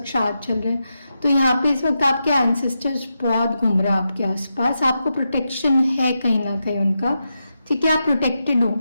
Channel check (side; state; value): both; inverted; correlation -0.87